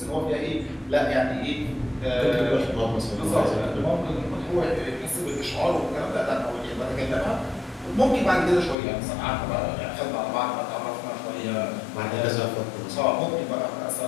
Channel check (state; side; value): drops out; right; at 8.8 s